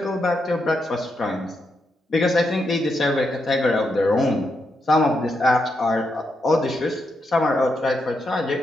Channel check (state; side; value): normal; both; correlation 0.82